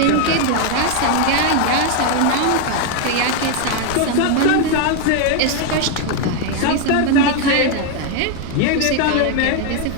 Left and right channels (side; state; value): both; different; correlation 0.01